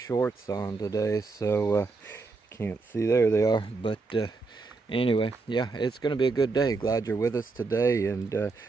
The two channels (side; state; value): left; quieter; 4.0 dB